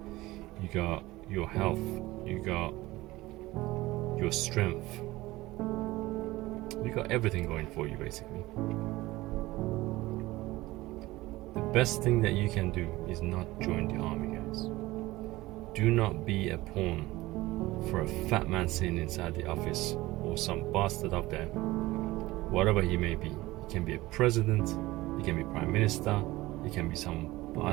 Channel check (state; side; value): quieter; left; 18.8 dB